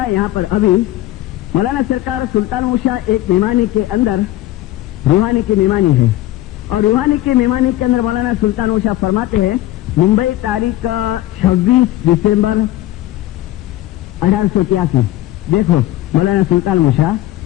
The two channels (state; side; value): quieter; right; 15.3 dB